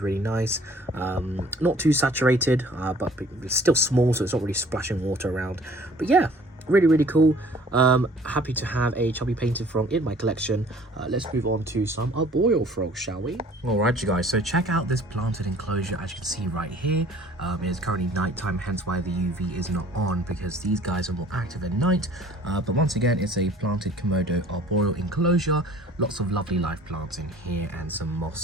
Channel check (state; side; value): normal; both; correlation 0.52